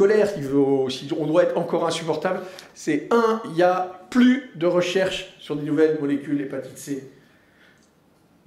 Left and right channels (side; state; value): both; identical; correlation 1.00